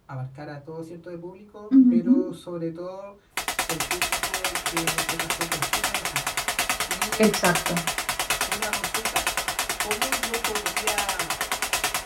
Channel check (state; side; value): identical; both; correlation 1.00